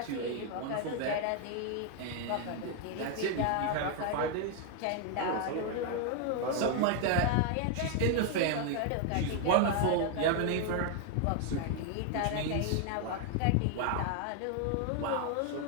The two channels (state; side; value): different; both; correlation 0.00